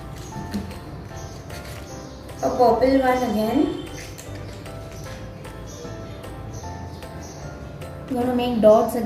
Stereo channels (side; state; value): both; identical; correlation 1.00